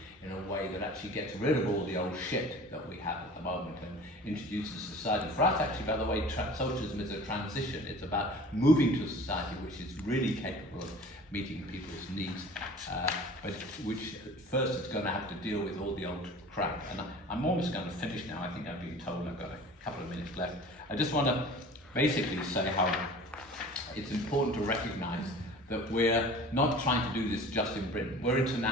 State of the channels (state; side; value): normal; both; correlation 0.43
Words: in a way that actually gets rid of all the old shit that we have at the moment and introduces society. For us, actually, by the way, socialism is a transition. It's about moving to a society which is really capable of meeting people's needs, but which first it's going to have to deal with all the old crap. And I'm almost going to finish now. I think I've been told I've got a couple of minutes left. I just want to basically say how it's important to recognise that we're not trying to do this just in Britain. We're